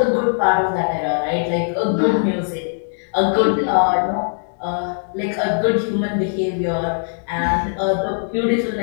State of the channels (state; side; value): silent; right; digital silence